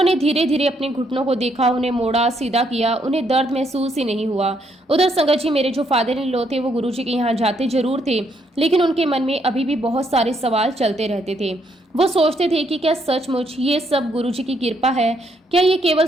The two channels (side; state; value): both; normal; correlation 0.73